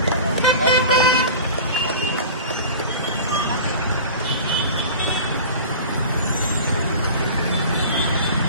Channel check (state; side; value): inverted; both; correlation -0.37